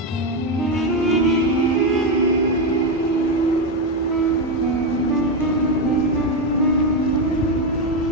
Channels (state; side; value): normal; both; correlation 0.09